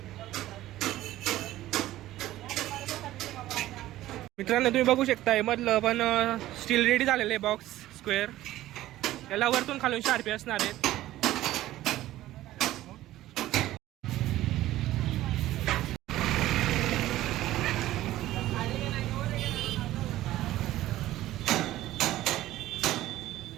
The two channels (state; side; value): quieter; left; 15.1 dB